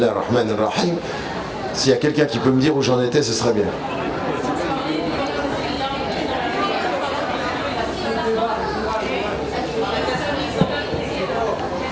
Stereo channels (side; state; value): both; identical; correlation 1.00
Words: ar-Rahman ar-Rahim. S'il y a quelqu'un qui peut me dire où j'en étais, ce serait bien.